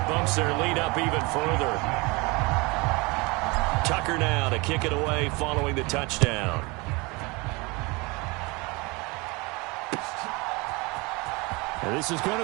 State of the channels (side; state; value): left; quieter; 26.1 dB